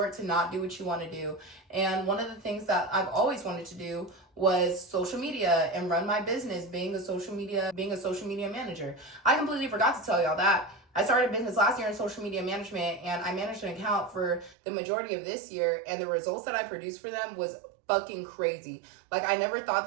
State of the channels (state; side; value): drops out; left; at 14.6 s